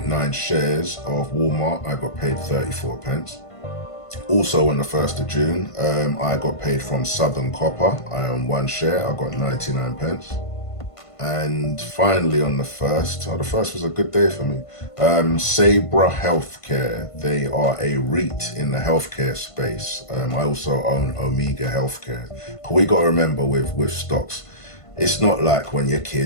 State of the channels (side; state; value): right; late; 1.5 ms